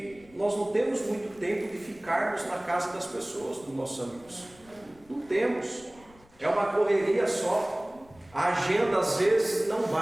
nós não temos muito tempo de ficarmos na casa das pessoas, dos nossos amigos. Não temos. É uma correria só. A agenda às vezes não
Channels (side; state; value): left; noise; rumble, 27 dB below the sound